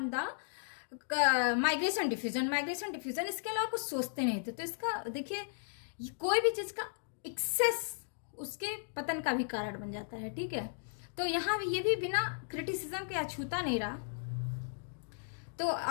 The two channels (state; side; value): silent; right; digital silence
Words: the migration diffusion, इसके अलावा कुछ सोचते नहीं थे। तो इसका देखिए, कोई भी चीज का एक्सेस उसके पतन का भी कारण बन जाता है, ठीक है। तो यहाँ ये भी बिना क्रिटिसिज्म के अछूता नहीं रहा। तो